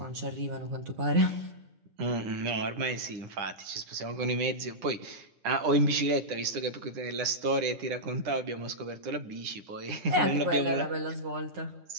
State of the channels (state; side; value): late; left; 9.8 ms